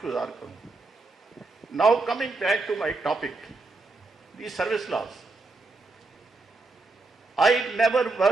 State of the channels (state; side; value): quieter; left; 3.5 dB